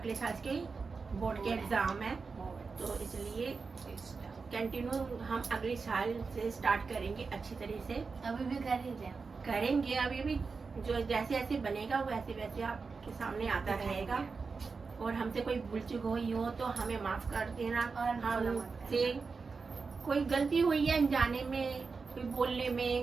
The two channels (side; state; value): left; quieter; 4.7 dB